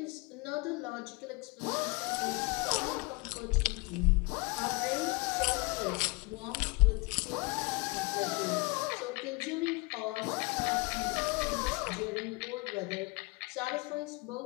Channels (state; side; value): quieter; right; 27.2 dB